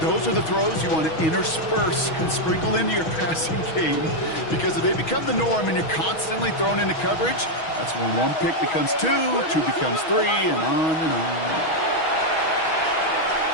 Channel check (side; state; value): right; late; 6.2 ms